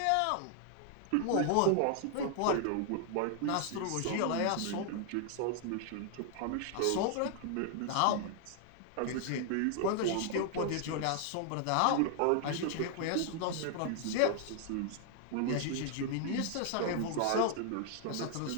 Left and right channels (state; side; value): different; both; correlation 0.00